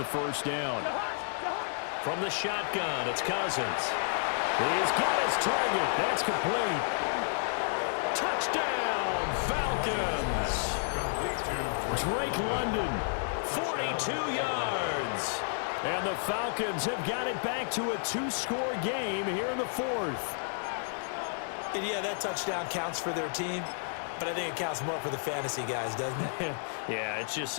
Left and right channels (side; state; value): right; silent; digital silence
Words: first down. From the shotgun, it's Cousins. He's got his target. That's complete. Touchdown, Falcons. Drake London, 42 yards. And the Falcons have got it back to a 2-score game here in the 4th. And yeah, that touchdown counts for their team, but I think it counts more for the fantasy guys, doesn't it? Yeah, it's just